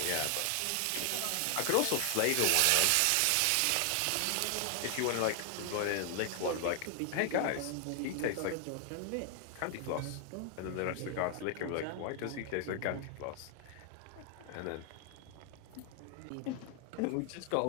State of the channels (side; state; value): both; different; correlation 0.00